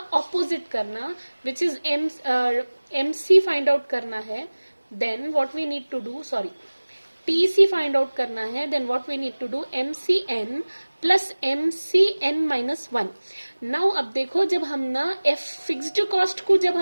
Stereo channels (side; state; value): both; inverted; correlation -1.00